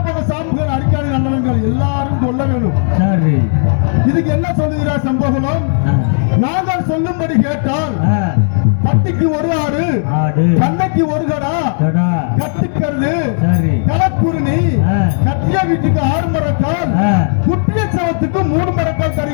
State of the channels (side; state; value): right; silent; 69 dB below the other